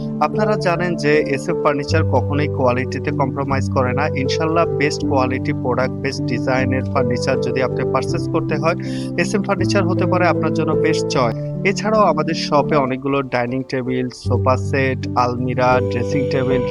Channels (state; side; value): identical; both; correlation 1.00